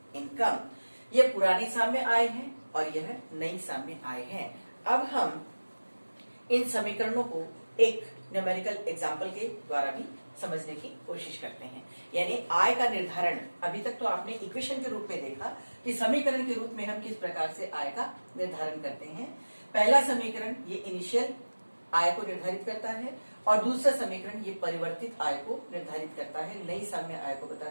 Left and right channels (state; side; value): inverted; both; correlation -1.00